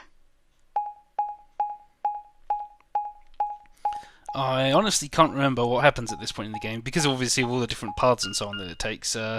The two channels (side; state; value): both; identical; correlation 1.00